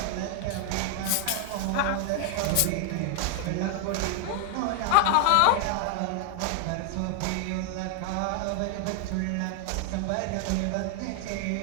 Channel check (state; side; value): different; both; correlation 0.00